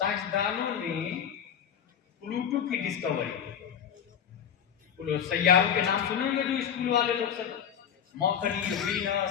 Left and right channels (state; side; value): quieter; right; 8.6 dB